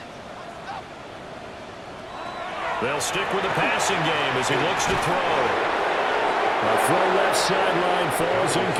They'll stick with the passing game as he looks to throw. A throw left sideline falls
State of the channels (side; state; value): both; identical; correlation 1.00